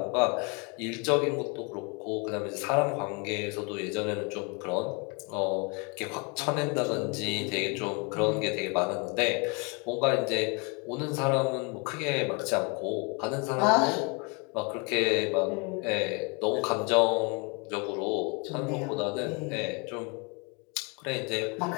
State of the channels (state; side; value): quieter; right; 32.2 dB